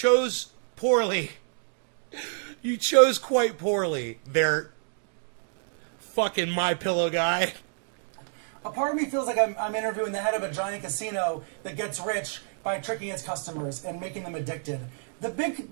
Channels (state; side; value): silent; left; 59 dB below the other